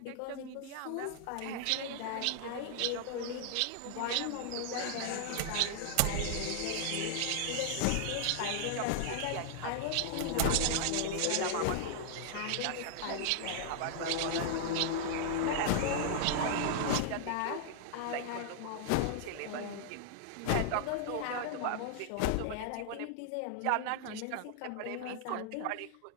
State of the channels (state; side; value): different; both; correlation -0.01